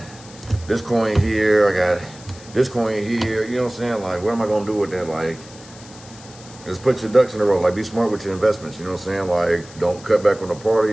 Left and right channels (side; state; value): left; noise; hiss, 20 dB below the sound